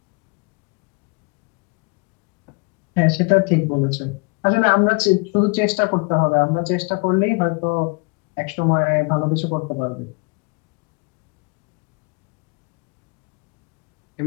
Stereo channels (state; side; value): quieter; right; 32.0 dB